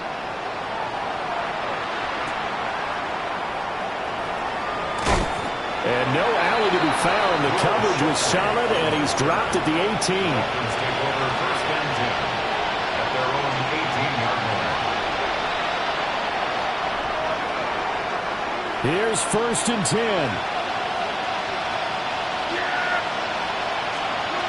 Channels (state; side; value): identical; both; correlation 1.00